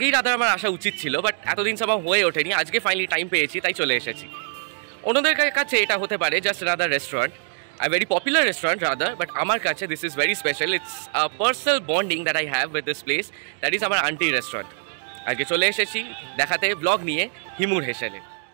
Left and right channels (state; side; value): silent; left; digital silence